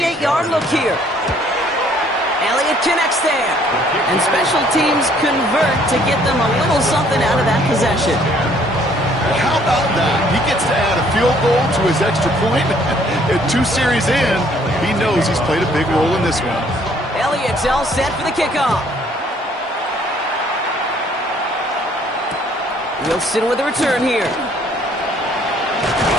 look here. Elliott connects there. And special teams convert to get them a little something out of that possession. How about that? He gets to add a field goal to his extra point. And 2 series in, he knows he's played a big role in this one. Elliott's all set for the kickoff. Wilson with the return here.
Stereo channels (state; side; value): normal; both; correlation 0.62